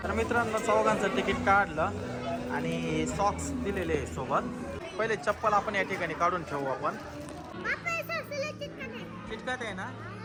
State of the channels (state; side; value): identical; both; correlation 1.00